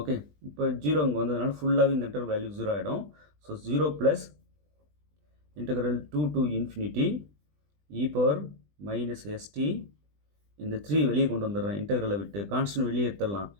இப்போ 0 இங்கே வந்ததுனால ஃபுல்லாகவே இந்த இன்டர் வேல்யூ 0 ஆகிடும். So 0 + integral 2 to infinity e power minus ST இந்த 3 வெளியே கொண்டு வந்துடுறேன் இன்டெக்ரலை விட்டு கான்ஸ்டன்ட் வெளியே எடுத்துடலாம்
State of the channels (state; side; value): late; left; 20 ms